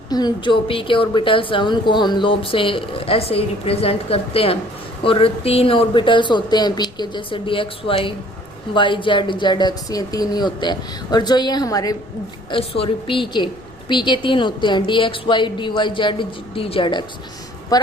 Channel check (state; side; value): noise; left; rumble, 24 dB below the sound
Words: जो पी के ऑर्बिटल्स हैं उनको हम लोब से ऐसे ही रिप्रेजेंट करते हैं। और 3 ऑर्बिटल्स होते हैं पी के, जैसे d x y, y z, z x, ये 3 ही होते हैं। और जो ये हमारे पी के 3 होते हैं, d x y, d y z, d z x. पर